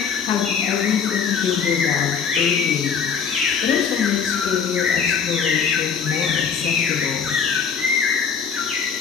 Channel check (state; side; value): quieter; right; 6.5 dB